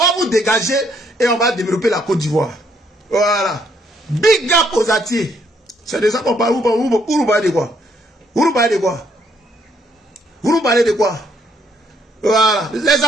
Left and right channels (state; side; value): normal; both; correlation 0.70